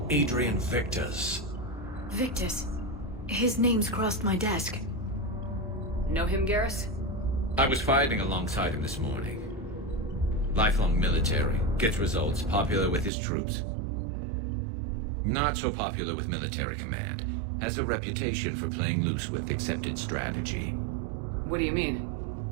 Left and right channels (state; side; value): drops out; left; at 13.1 s